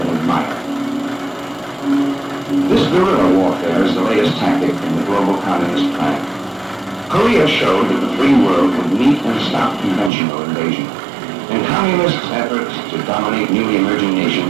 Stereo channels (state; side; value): drops out; left; at 10.1 s